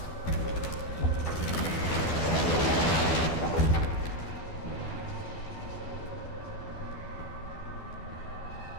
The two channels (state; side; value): late; right; 12 ms